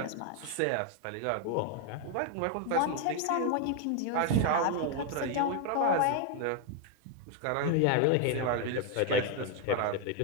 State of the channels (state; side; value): different; both; correlation 0.01